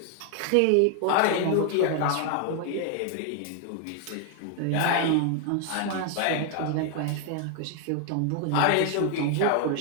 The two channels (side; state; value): both; different; correlation 0.00